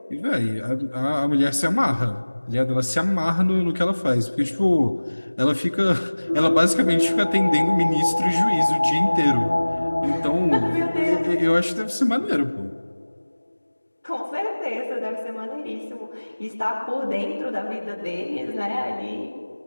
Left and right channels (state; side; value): inverted; both; correlation -1.00